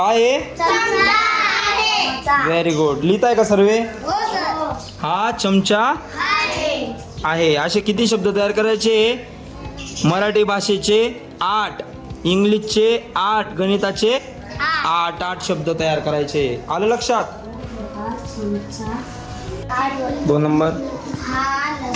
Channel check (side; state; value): both; identical; correlation 1.00